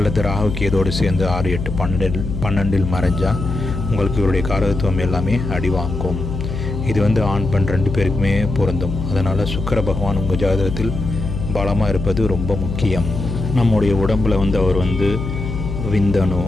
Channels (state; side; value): noise; left; hum, 5 dB below the sound